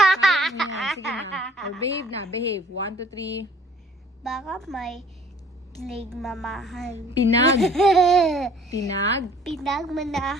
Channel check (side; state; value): both; normal; correlation 0.55